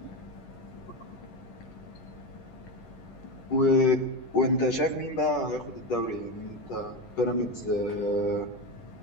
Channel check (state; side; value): late; right; 10 ms